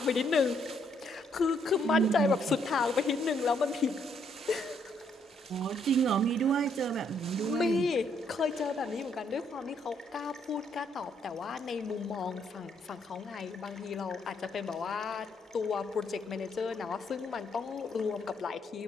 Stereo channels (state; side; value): normal; both; correlation 0.71